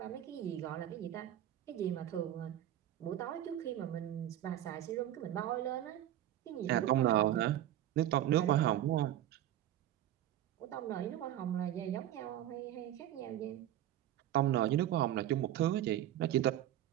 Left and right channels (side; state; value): left; quieter; 12.5 dB